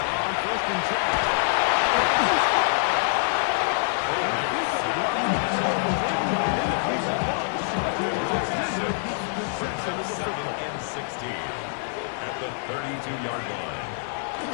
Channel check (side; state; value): right; silent; 57 dB below the other